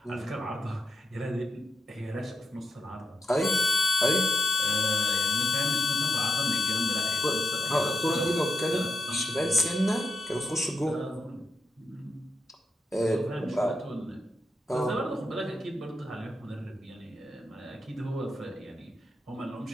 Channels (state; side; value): normal; both; correlation 0.86